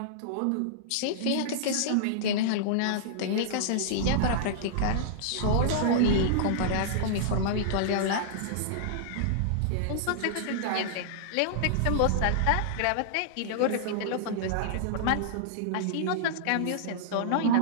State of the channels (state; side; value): different; both; correlation -0.02